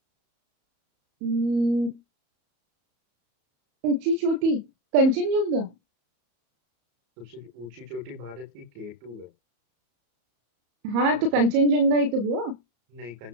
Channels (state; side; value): late; left; 34 ms